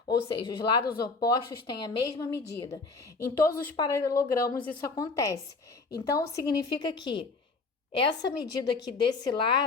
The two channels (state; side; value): quieter; right; 4.0 dB